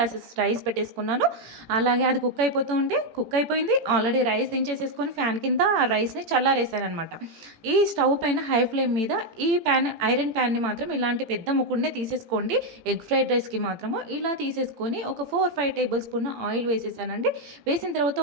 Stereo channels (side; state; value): left; late; 18 ms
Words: రైస్ పెట్టేసుకున్నాను. అలాగే అది కుక్ అయిపోయింది. ఆల్రెడీ రైస్ దించేసేసుకొని ఫ్యాన్ కింద ఆ రైస్‌ని చల్లారేసాననమాట. ఈ స్టవ్ పైన హై ఫ్లేమ్ మీద ఈ ఐరన్ ప్యాన్‌ని మాత్రం ఇలాంటి పెద్ద ముకుడునే తీసేసుకోండి. ఎగ్ ఫ్రైడ్ రైస్‌కి మాత్రము ఇలా తీసేసుకొని ఒక 4, 5 టేబుల్ స్పూన్ ఆయిల్ వేసేసానండి. వేసిన తర్వాత